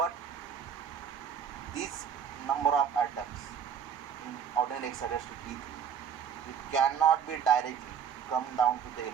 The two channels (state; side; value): quieter; left; 7.7 dB